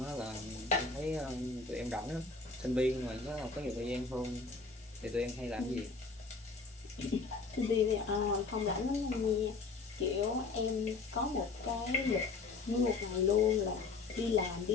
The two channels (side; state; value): right; quieter; 4.2 dB